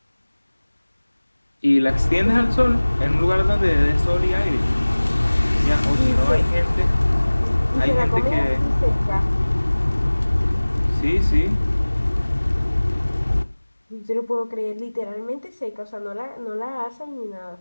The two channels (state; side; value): inverted; both; correlation -1.00